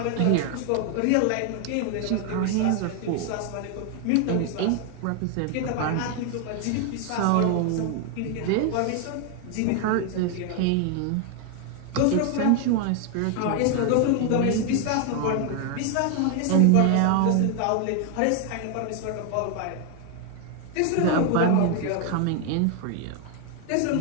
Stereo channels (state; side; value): different; both; correlation 0.00